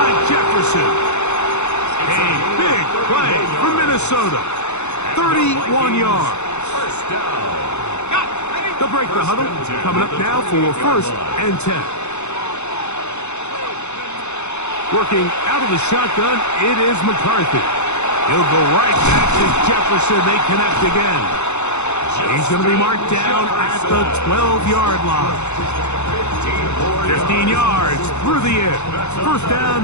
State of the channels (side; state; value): right; late; 0.82 ms